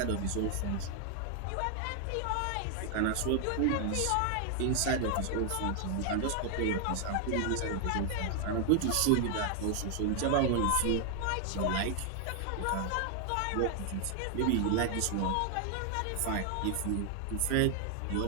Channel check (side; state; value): both; different; correlation 0.00